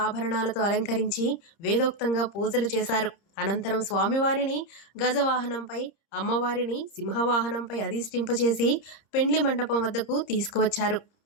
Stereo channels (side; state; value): right; late; 30 ms